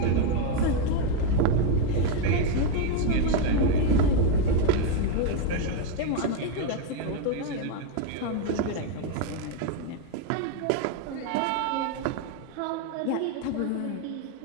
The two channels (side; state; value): both; different; correlation 0.01